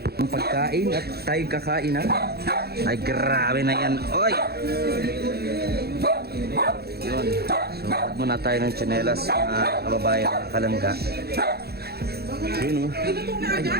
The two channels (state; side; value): late; left; 0.46 ms